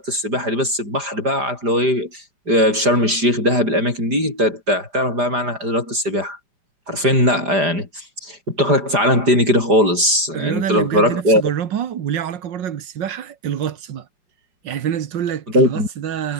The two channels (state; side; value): late; left; 5.0 ms